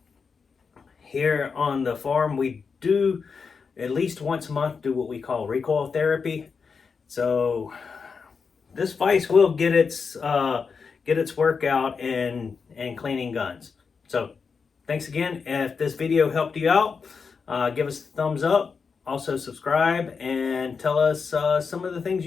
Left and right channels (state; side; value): quieter; right; 5.4 dB